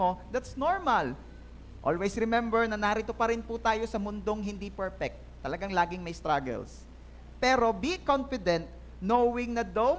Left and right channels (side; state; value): both; identical; correlation 1.00